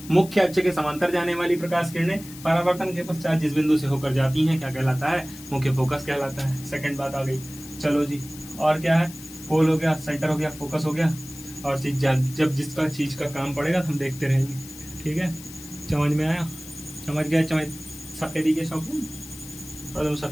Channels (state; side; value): noise; left; hiss, 16 dB below the sound